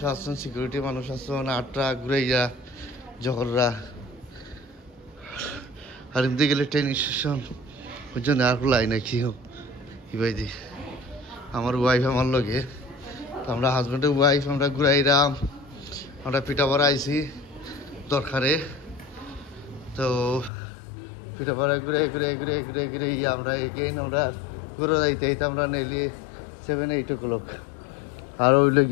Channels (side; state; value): right; drops out; at 20.5 s